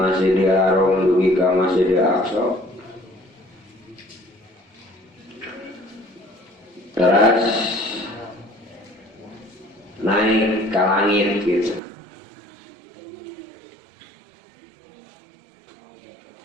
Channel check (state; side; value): drops out; left; at 11.8 s